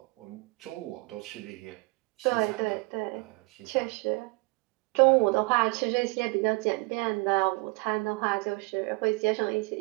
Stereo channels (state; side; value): quieter; left; 28.5 dB